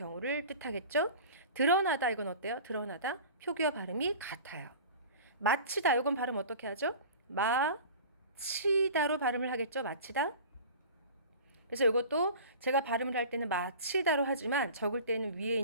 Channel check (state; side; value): inverted; both; correlation -0.39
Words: 뜻하겠죠. 드러나다 이건 어때요? 드러나다 표기와 발음이 같아요. 마치다 이건 발음 어떻게 하죠? 마치다로 발음을 하겠죠. 마치다. 그래서 이것도 제가 발음을 할 때는 마치다로 하지만 적을 때는 위에